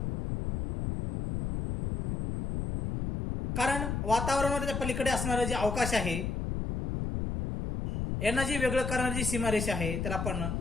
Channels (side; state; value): left; noise; rumble, 3 dB below the sound